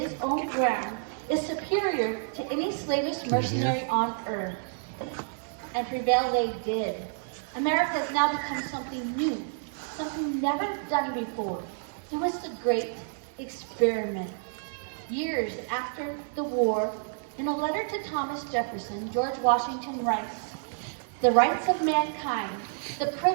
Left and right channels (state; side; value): silent; left; 58 dB below the other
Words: own ground is superior to any slavish mercenary on earth. And prevail they did. America has now become something new, something never done before. It was the great experiment. Years after the war, in a letter to Thomas Jefferson, George Washington writes, "The rights of mankind, the